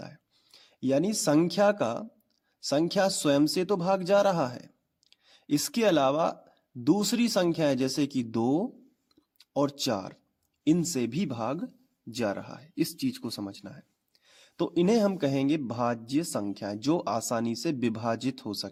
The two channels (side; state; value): both; identical; correlation 1.00